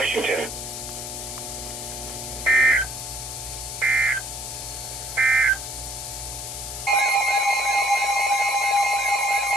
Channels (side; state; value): left; noise; hiss, 7 dB below the sound